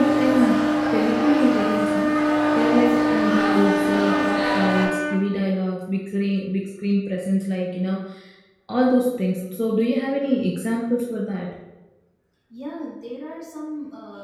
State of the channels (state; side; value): identical; both; correlation 1.00